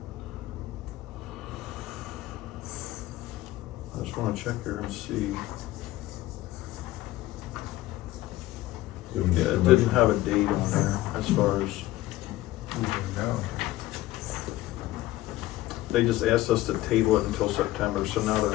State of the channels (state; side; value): quieter; right; 16.6 dB